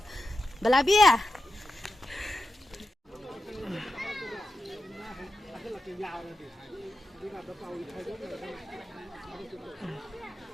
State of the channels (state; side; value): normal; both; correlation 0.90